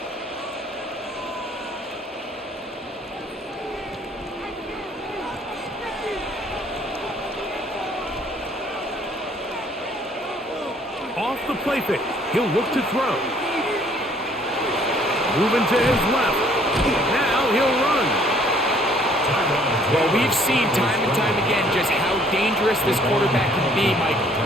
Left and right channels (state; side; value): normal; both; correlation 0.60